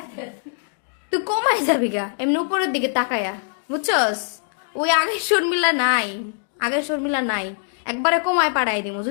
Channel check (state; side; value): silent; right; digital silence